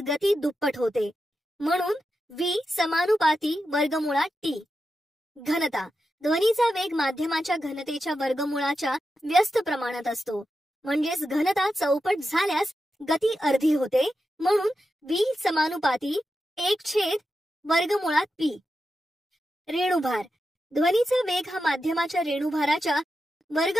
गती दुप्पट होते. म्हणून v समानुपाती वर्गमुळात टी. घनता. ध्वनीचा वेग माध्यमाच्या घनतेच्या वर्गमुळाच्या व्यस्त प्रमाणात असतो. म्हणजेच घनता चौपट झाल्यास गती अर्धी होते. म्हणून v समानुपाती 1 वर्गमुळात p. रेणुभार. ध्वनीचा वेग हा माध्यमाच्या रेणुभाराच्या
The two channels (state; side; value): normal; both; correlation 0.89